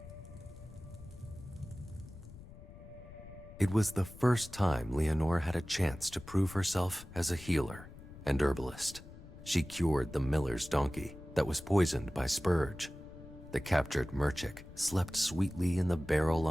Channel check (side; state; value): left; noise; rumble, 16 dB below the sound